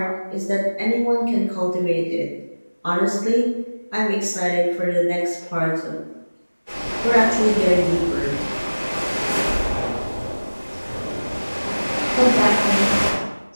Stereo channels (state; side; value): inverted; both; correlation -1.00